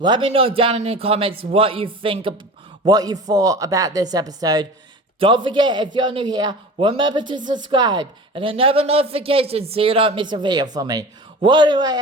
me know down in the comments what you thought about this episode. Don't forget, if you're new here, remember to subscribe and enable notifications so you don't miss a video from me. Well, anyway,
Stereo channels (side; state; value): both; normal; correlation 0.36